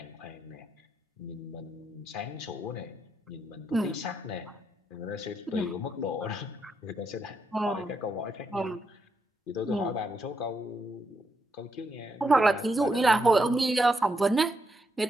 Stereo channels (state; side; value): normal; both; correlation 0.80